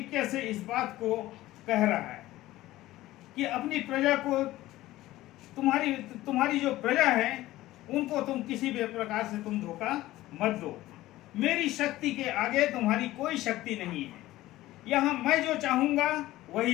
से इस बात को कह रहा है कि अपनी प्रजा को, तुम्हारी जो प्रजा है उनको तुम किसी भी प्रकार से तुम धोखा मत दो। मेरी शक्ति के आगे तुम्हारी कोई शक्ति नहीं है। यहाँ मैं जो चाहूंगा वही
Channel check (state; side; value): quieter; right; 16.4 dB